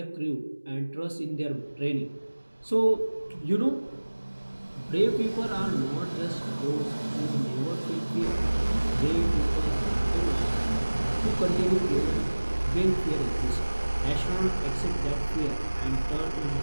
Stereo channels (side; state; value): both; inverted; correlation -1.00